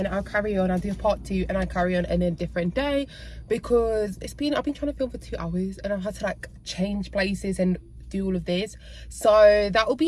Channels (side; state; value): both; identical; correlation 1.00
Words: I'll carry on. I'll do part 2 and I'll carry on in a different day, because I've been trying to film for 2 hours and I've had to like change places and do all of this. So that will